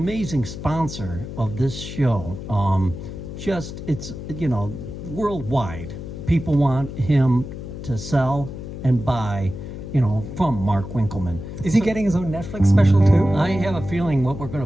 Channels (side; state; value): left; noise; hum, 9 dB below the sound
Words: sponsor of this show. It's worldwide. People want him to sell and buy, from Mark Winkelman. Is he getting his own Netflix special too? I have a feeling what we're going